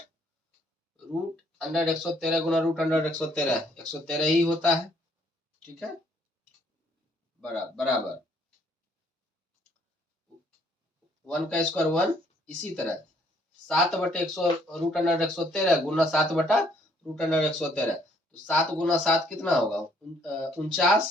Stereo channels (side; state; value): both; normal; correlation 0.65